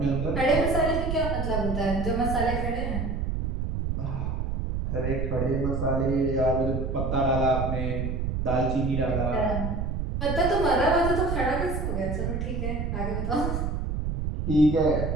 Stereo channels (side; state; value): right; noise; rumble, 1 dB below the sound